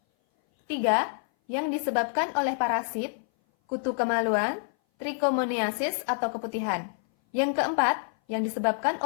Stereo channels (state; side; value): silent; right; 58 dB below the other